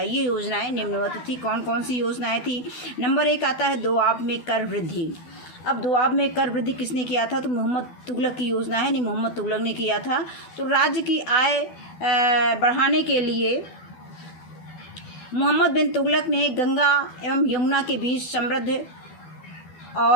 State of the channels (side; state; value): right; late; 12 ms